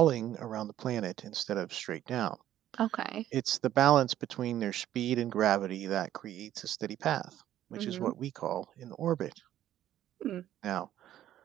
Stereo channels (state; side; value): quieter; left; 12.3 dB